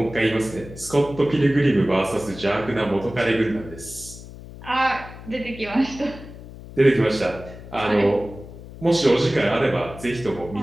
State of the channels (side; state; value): left; noise; hum, 15 dB below the sound